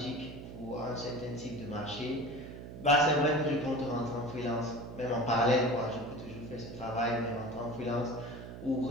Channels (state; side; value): noise; right; hum, 11 dB below the sound